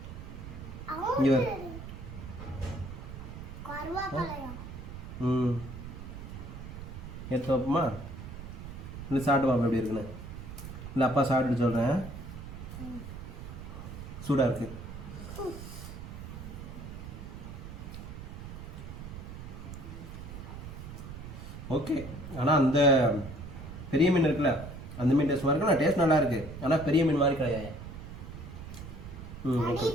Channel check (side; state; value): right; noise; rumble, 10 dB below the sound